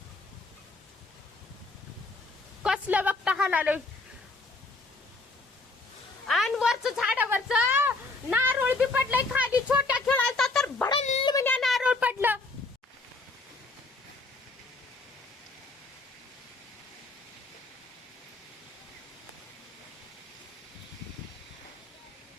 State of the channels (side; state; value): right; quieter; 3.3 dB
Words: कसलं बघता हालालोय. आणि वरच झाडावरच नारळ बी पडलंय खाली. छोट्या खेळाचा तर भडल म्हणजे नारळ पडलं.